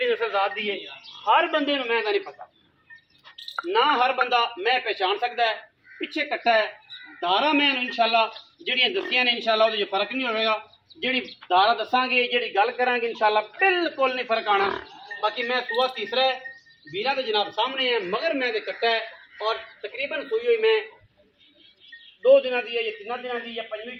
नस्ल जात दी है। हर बंदे मैं नहीं पता ना, हर बंदा मैं पहचान सकता है। पिछे कट्टा है दारा मैं इंशाल्लाह जिहड़ियां दसियां ने इंशाल्लाह उहदे फर्क नहीं होगा। जिहड़ी दारा दसांगे, जिहड़ी गल करांगे इंशाल्लाह बिल्कुल नहीं फर्क आना। बाकी मैं सूआ तीसरा है, वीरा के जनाब सामने है, मगर मैं तो कट्टा है और तकरीबन सूई हुई मैं 2 दिनों की है या 3 दिनों की या 5वीं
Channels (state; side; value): identical; both; correlation 1.00